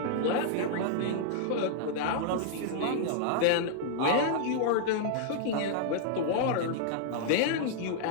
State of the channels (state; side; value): different; both; correlation -0.01